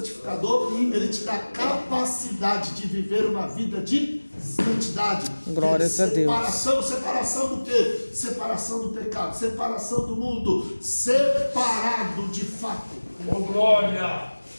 ele te dá capacidade de viver uma vida de santidade. Glórias a Deus. Separação do quê? Separação do pecado, separação do mundo, separado de fato. Oh, glória!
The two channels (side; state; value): both; inverted; correlation -1.00